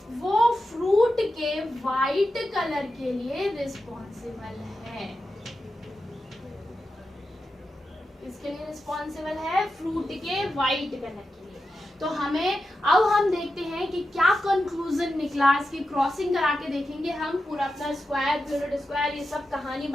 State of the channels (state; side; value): normal; both; correlation 0.90